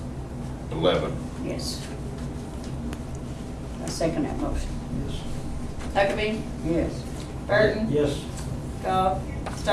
11. Yes. I second that motion. Yes. Huckabee, Yes. Burton, Yes. Goff,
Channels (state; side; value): identical; both; correlation 1.00